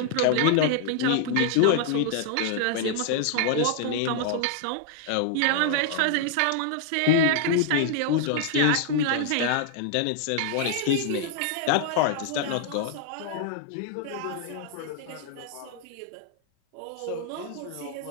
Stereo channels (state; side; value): different; both; correlation -0.01